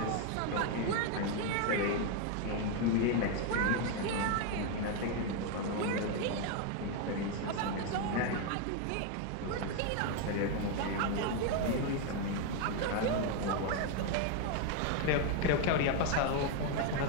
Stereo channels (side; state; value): both; different; correlation 0.01